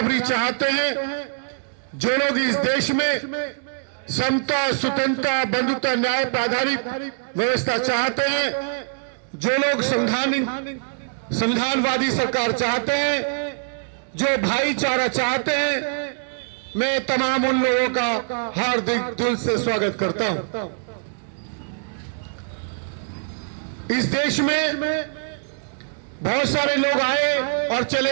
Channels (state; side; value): silent; left; digital silence